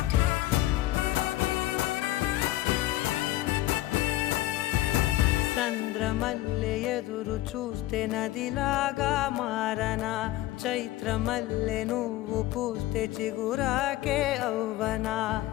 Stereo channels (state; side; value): quieter; right; 16.1 dB